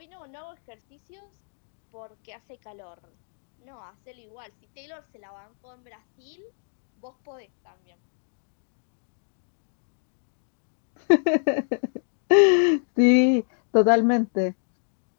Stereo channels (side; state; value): right; silent; digital silence